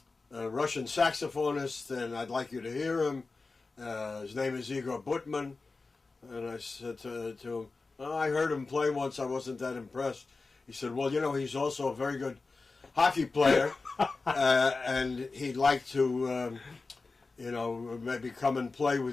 Russian saxophonist, and I'd like you to hear him. His name is Igor Butman. And I said to him, I heard him play once, I wasn't that impressed. He said, well, he's also a very good hockey player, and he'd like to, maybe come and play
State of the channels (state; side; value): quieter; right; 3.9 dB